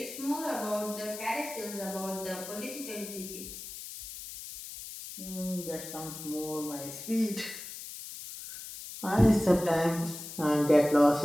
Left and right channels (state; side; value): noise; left; hiss, 11 dB below the sound